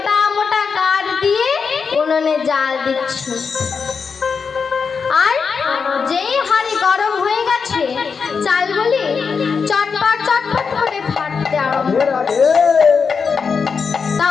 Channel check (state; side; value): quieter; right; 5.6 dB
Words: মোটা কাঠ দিয়ে উনুনে জাল দিচ্ছে। আর যেই হাঁড়ি গরম হয়ে গেছে, চালগুলি চটপট চটপট করে ফাটতে আরম্ভ করে। তা